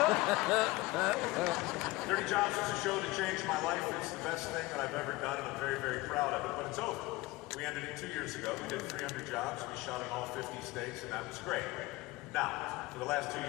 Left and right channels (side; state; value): right; quieter; 20.3 dB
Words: Dirty Jobs was a show that changed my life. It's the best thing that I've ever done, and I'm very, very proud of it, but it's over. We ended it 2 years ago. We did 300 jobs. We shot in all 50 states, and that was great. Now, for the last 2